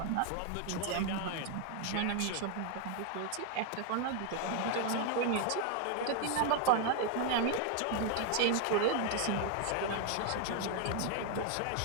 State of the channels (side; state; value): both; different; correlation 0.01